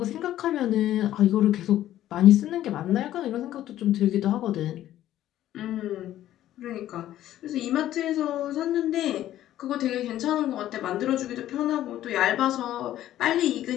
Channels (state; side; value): quieter; right; 13.0 dB